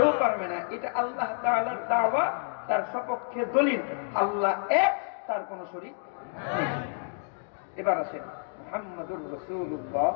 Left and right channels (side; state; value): right; silent; 59 dB below the other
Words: পারবে না। এটা আল্লাহ তাআলার দাওয়া, তার সপক্ষে দলিল। আল্লাহ এক, তার কোন শরীক নেই। এবার আসেন মুহাম্মাদুর রাসূলুল্লাহ।